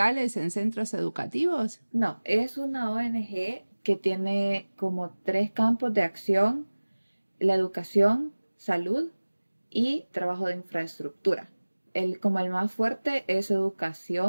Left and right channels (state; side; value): inverted; both; correlation -1.00